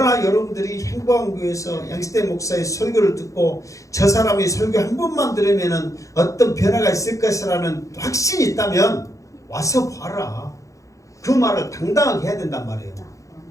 여러분들이 행복한 교회에서 양시대 목사의 설교를 듣고 저 사람이 설교 한 번만 들으면 어떤 변화가 있을 것이라는 확신이 있다면 와서 봐라. 그 말을 당당하게 해야 된단 말이에요.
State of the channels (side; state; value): right; late; 0.16 ms